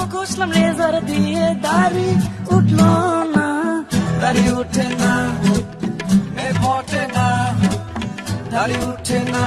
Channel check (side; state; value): both; identical; correlation 1.00